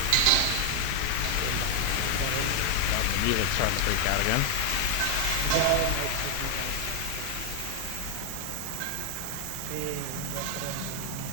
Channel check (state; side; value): different; both; correlation 0.00